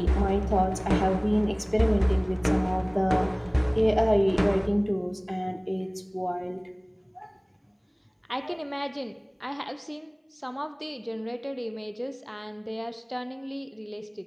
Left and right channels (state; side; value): identical; both; correlation 1.00